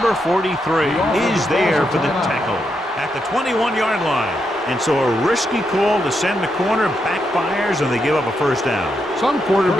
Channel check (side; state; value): both; normal; correlation 0.82